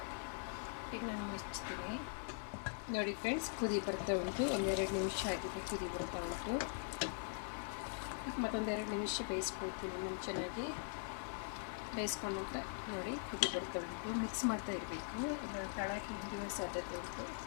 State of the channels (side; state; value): right; silent; digital silence